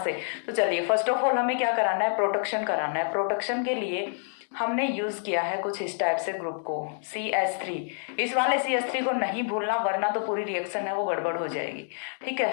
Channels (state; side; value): silent; right; 60 dB below the other